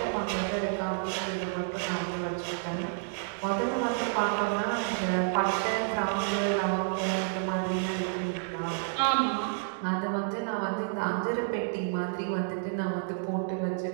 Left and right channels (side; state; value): left; silent; digital silence